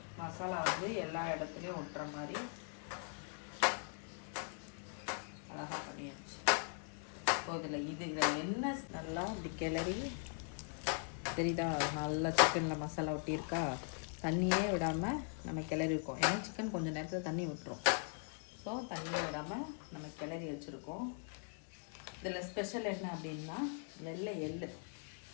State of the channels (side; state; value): right; silent; 51 dB below the other